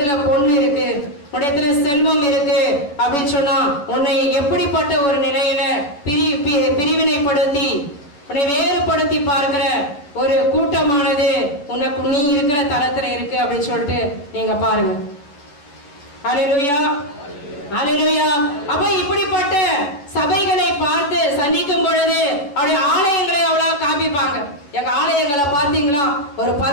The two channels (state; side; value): late; right; 11 ms